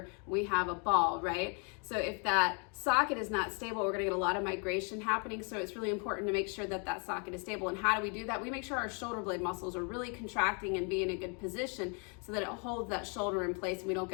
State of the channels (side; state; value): right; quieter; 36.8 dB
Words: we have a ball, right? So if that socket is not stable, we're gonna get a lot of migration happening. So it's really important to make sure that that socket is stable. And how do we do that? We make sure our shoulder blade muscles are really contracting and be in a good position so that it holds that shoulder in place and we don't